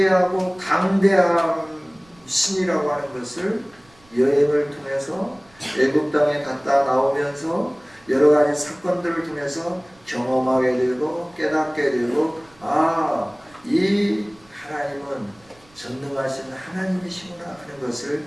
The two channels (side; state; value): right; noise; rumble, 29 dB below the sound